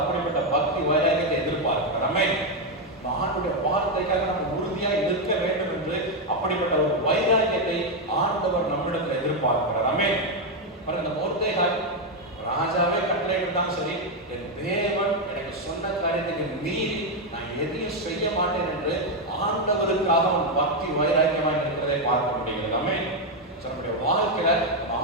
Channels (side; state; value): both; normal; correlation 0.04